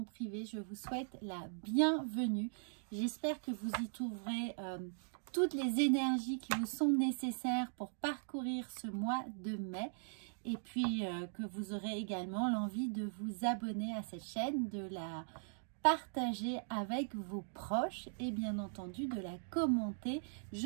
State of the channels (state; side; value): silent; left; digital silence